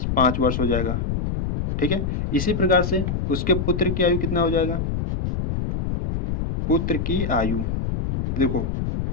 5 वर्ष हो जाएगा। ठीक है, इसी प्रकार से उसके पुत्र की आयु कितना हो जाएगा, पुत्र की आयु, देखो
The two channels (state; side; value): noise; left; rumble, 2 dB below the sound